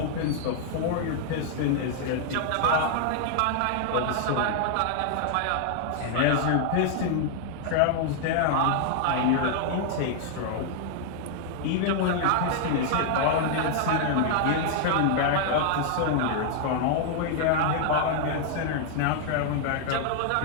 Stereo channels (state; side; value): different; both; correlation -0.01